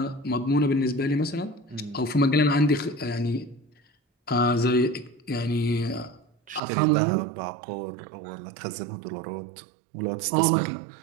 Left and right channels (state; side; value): drops out; left; at 6.6 s